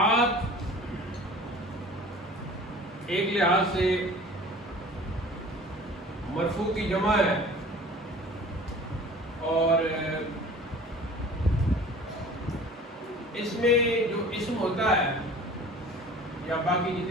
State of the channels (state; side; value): normal; both; correlation 0.44